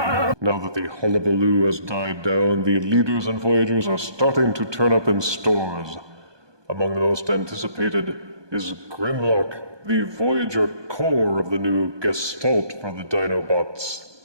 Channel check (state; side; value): late; left; 1.2 ms